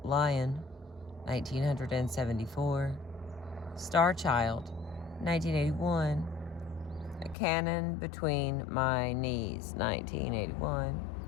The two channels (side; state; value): right; drops out; at 7.4 s